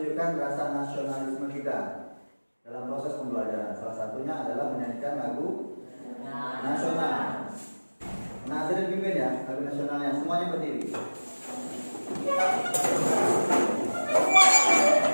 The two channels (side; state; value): both; inverted; correlation -1.00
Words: rasa nasionalisme kita dalam proses pembelajaran. Salah satunya adalah menyanyikan lagu nasional. Nah, jadi pimpin ya lagu nasionalnya, semuanya berdiri.